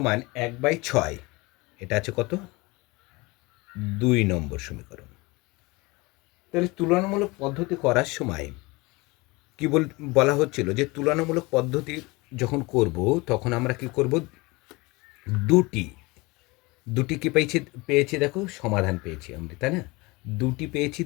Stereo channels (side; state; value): right; quieter; 24.1 dB